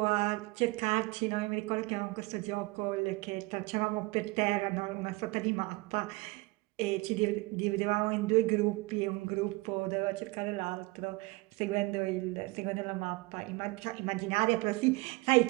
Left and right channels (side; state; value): left; quieter; 23.7 dB